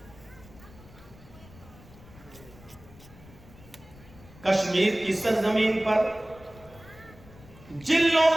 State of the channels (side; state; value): left; noise; rumble, 21 dB below the sound